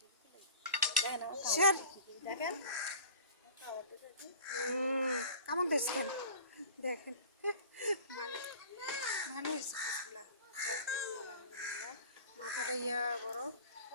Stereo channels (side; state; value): both; inverted; correlation -0.41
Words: দেখেন আমার স্যার দেখেন কেমন দেখছেন দেখেন, মানে ভালো হয়েছে পিসগুলা। মাথাটা ইয়া বড়।